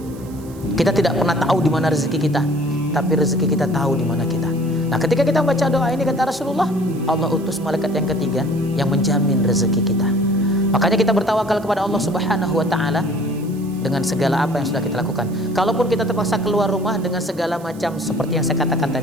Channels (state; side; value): noise; right; hiss, 23 dB below the sound